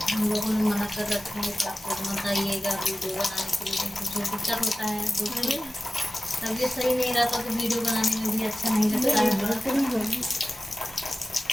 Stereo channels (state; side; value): normal; both; correlation 0.96